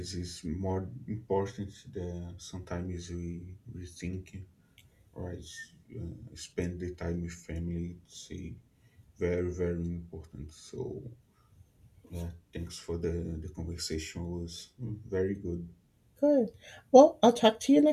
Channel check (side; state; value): both; identical; correlation 1.00